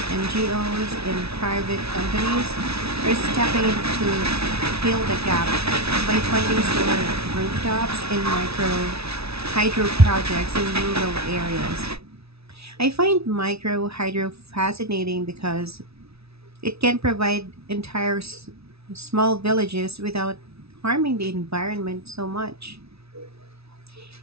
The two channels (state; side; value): late; left; 0.78 ms